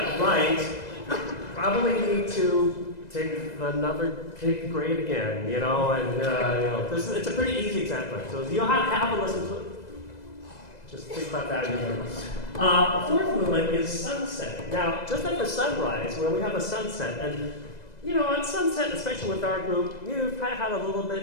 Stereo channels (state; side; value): late; right; 2.0 ms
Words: right, probably need to take another grade again, it's a pretty easy example. So you'll have to listen to it. Just think about that in your mind. The fourth movement is sunset. Now, just like the sunrise, where we have a sunset, and on sunset, especially with our group, you probably had a little